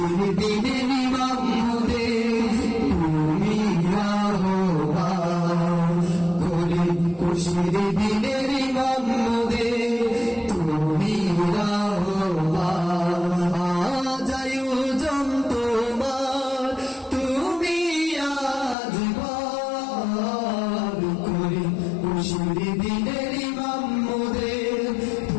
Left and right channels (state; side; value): drops out; right; at 18.8 s